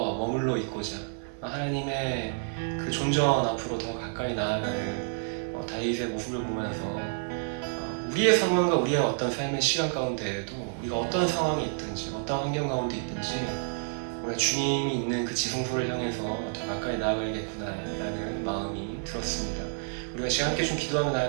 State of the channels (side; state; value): left; silent; digital silence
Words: 머물러 있고자 하나님의 그 존전 앞으로 더 가까이 나아가는 다윗의 모습을 보면서 우리의 상황과 우리의 어떤 삶의 시간 가운데에도 우리가 어떤 상황이 있든지 어떤 환경 가운데 있든지 우리가 주님이 있는 그 지성소를 향해서 더 가까이 나아가야겠구나라는 마음이 들었습니다. 우리가 지금 함께 좀 기도하며